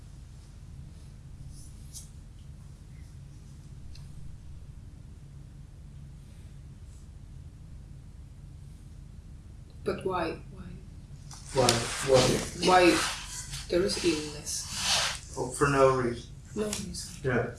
But why? Why? Why there is illness? Oh, for no reason. No reason. Yeah.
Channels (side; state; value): both; identical; correlation 1.00